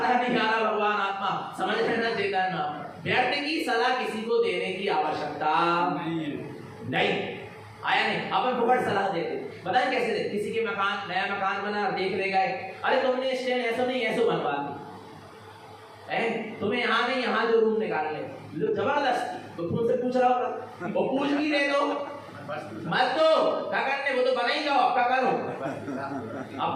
नहीं आ रहा। भगवान आत्मा समझ लेना चेतन, व्यर्थ की सलाह किसी को देने की आवश्यकता नहीं। आया नहीं, अपन फुकट सलाह देते। बताएं कैसे देते? किसी के मकान, नया मकान बना, देख ले गए, अरे तुमने स्टैंड ऐसा नहीं ऐसा बनवा दी, तुम्हें यहाँ नहीं यहाँ जो रूम निकाल ले, जबरदस्ती। तो तुमसे पूछ रहा होगा, वो पूछ भी दे दो मत दो, क्या करने, वो तो बना ही जाओ, क्या करो,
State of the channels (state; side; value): identical; both; correlation 1.00